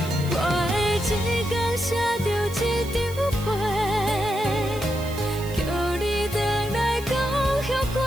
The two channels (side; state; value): right; noise; hiss, 16 dB below the sound